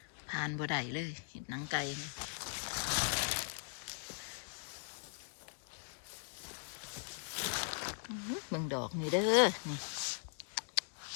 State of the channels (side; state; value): right; silent; digital silence